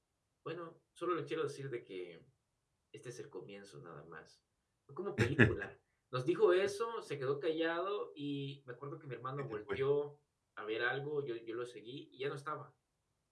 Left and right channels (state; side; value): identical; both; correlation 1.00